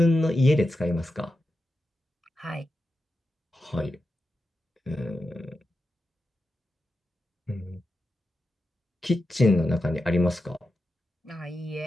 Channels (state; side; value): normal; both; correlation 0.89